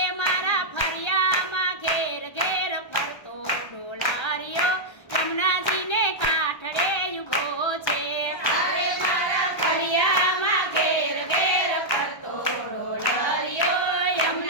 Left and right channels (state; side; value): late; right; 1.3 ms